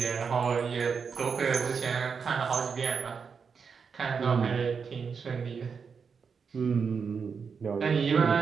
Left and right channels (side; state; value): left; quieter; 5.9 dB